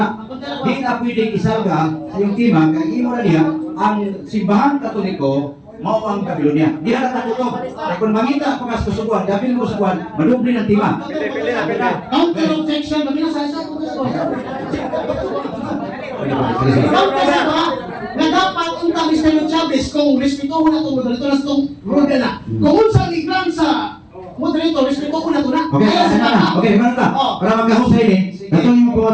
Hindi na pwedeng isarga sa iyong tema, kaya imo na niya, ang simbahan Katoliko, mao ang Babylonia. Di na natutog. Kaya kung mangita pa kas kasubuan, i-appeal mo sa kuwan, madubli ng tema. Counter objection, mamina sa isa. Na dapat unta Mr. Chavez kung respetuhon na itong moderator na itong rule na. Kung unsa ligran sa moderator, respetuhon na ito na. Okay, Kaya sa sana na. Okay, mana ka? Para magkahusay ni, natong yung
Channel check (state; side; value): identical; both; correlation 1.00